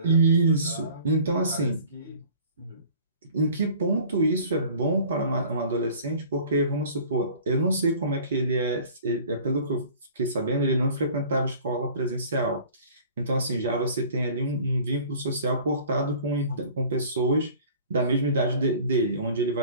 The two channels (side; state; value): both; inverted; correlation -0.48